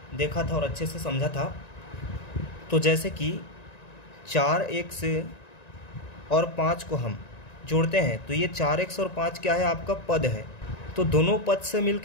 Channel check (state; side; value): late; right; 1.9 ms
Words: देखा था और अच्छे से समझा था। तो जैसे कि 4x और 5 को हम जोड़ते हैं तो ये 4x और 5 क्या है, आपका पद है। तो दोनों पद से